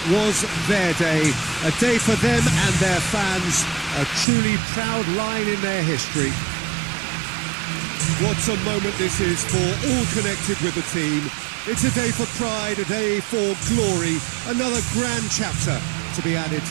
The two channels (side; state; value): left; drops out; at 4.2 s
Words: was their day. A day for them and their fans. A truly proud line in their history. What a moment this is for all connected with the team. It's a day for pride, a day for glory. Another grand chapter to be added